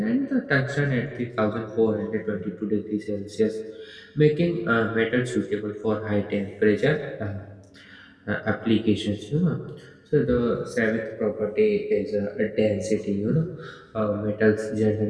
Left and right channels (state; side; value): identical; both; correlation 1.00